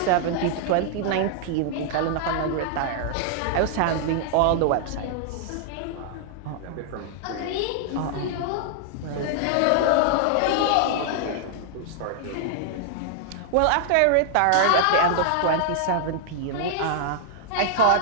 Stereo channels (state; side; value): different; both; correlation -0.01